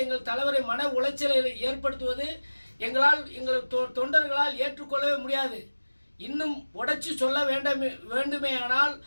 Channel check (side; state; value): both; inverted; correlation -1.00